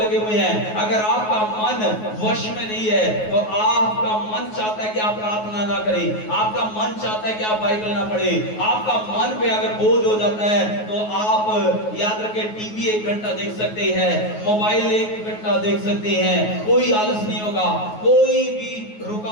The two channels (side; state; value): right; late; 9.4 ms